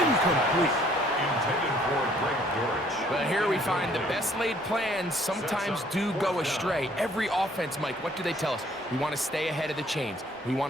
Intended for Greg Dortch. Well, here we find the best laid plans sometimes do go astray. Every offense, Mike, what do they tell us? We want to stay ahead of the chains. We want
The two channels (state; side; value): normal; both; correlation 0.61